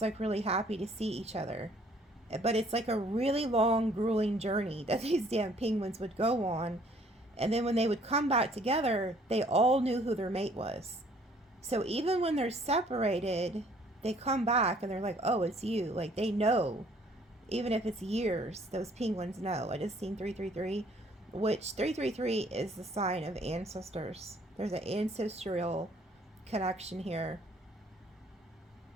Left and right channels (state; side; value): normal; both; correlation 0.60